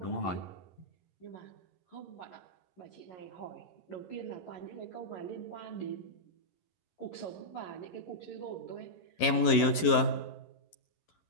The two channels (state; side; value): late; right; 11 ms